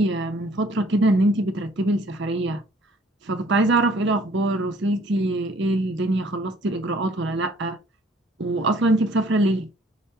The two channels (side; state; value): both; normal; correlation 0.58